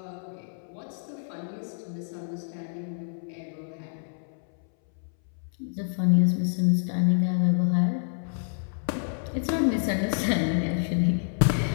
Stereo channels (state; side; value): silent; right; 60 dB below the other